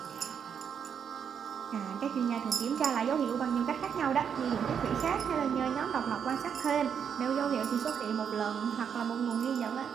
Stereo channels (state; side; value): quieter; left; 7.6 dB